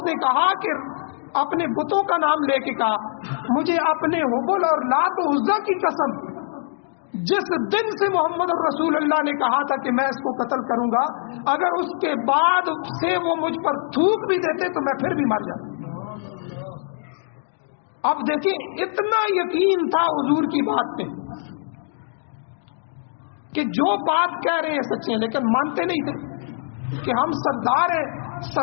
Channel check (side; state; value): right; silent; digital silence